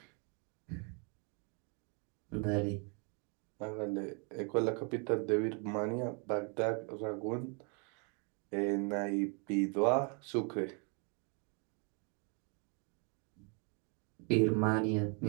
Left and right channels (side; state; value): left; quieter; 35.6 dB